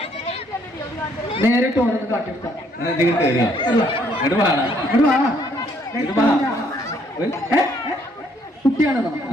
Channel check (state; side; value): normal; both; correlation 0.67